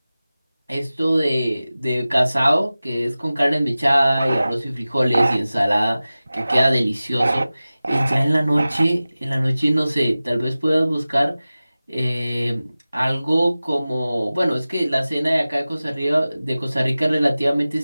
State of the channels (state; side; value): inverted; both; correlation -0.97